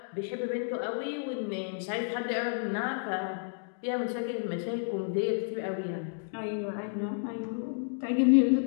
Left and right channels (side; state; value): right; silent; digital silence